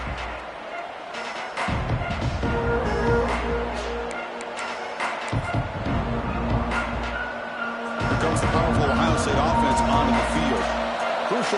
Here comes the powerful Ohio State offense onto the field. First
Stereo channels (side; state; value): both; identical; correlation 1.00